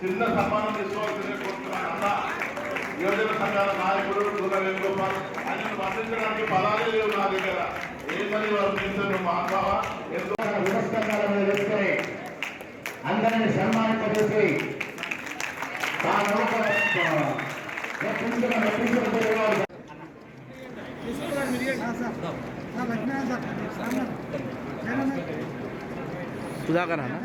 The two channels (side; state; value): both; identical; correlation 1.00